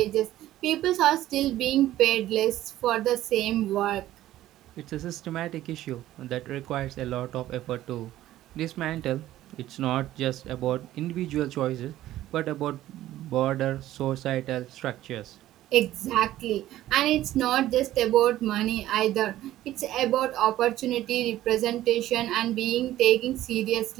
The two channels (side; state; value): left; quieter; 14.1 dB